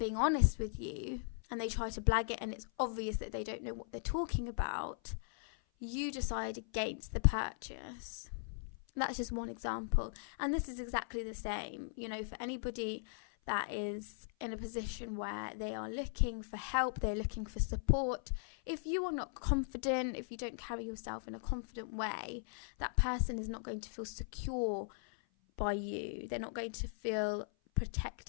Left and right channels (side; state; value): right; silent; 52 dB below the other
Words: honest with you, and they try to blag it and it's obvious that they don't know what they're talking about, you decide against the purchase. That's just one example. And this is exactly the same, for anybody that is in a position where they are looking for help, they're looking for support. If you are not confident, if you don't carry yourself in a confident way, that person is not going to feel secure by you. They're not going to feel